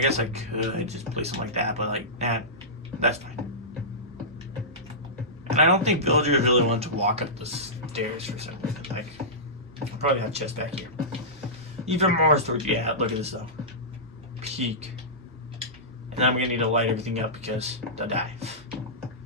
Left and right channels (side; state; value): both; normal; correlation -0.17